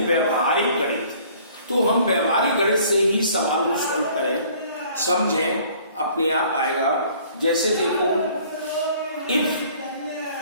व्यवहारिक गणित। तो हम व्यवहारिक गणित से ही सवाल को सॉल्व करें, समझें, अपने आप आएगा। जैसे देखो, if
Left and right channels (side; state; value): both; inverted; correlation -0.55